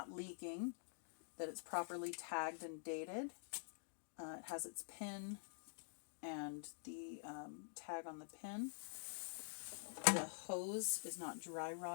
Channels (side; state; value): right; silent; digital silence